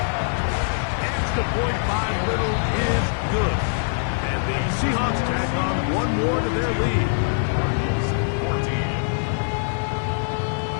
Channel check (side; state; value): right; silent; digital silence